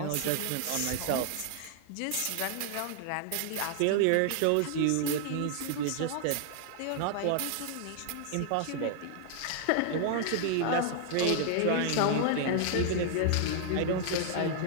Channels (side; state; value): both; different; correlation 0.00